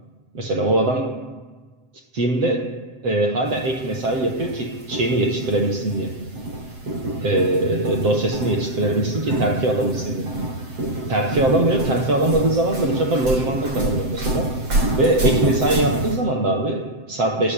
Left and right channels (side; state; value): left; late; 7.8 ms